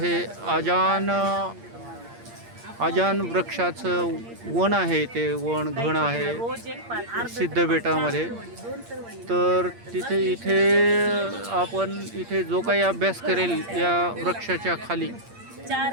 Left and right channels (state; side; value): late; left; 8.7 ms